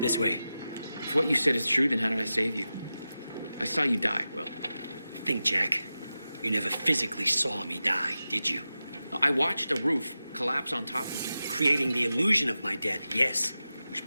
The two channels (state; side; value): inverted; both; correlation -0.93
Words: This way. If what you said is true, then how did I save you? I saw you die, Will. Think, Jack. You never physically saw me die, did you? I watched a roof collapse on top of you. Creating the illusion of my death, yes. Which